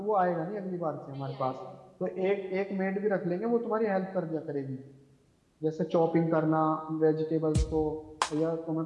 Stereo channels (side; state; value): both; identical; correlation 1.00